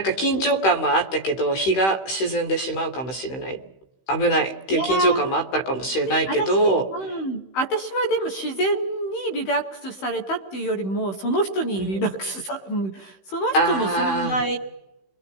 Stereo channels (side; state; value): right; late; 16 ms